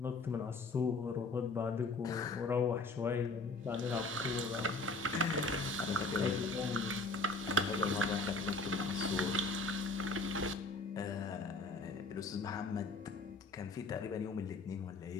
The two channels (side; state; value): right; quieter; 3.3 dB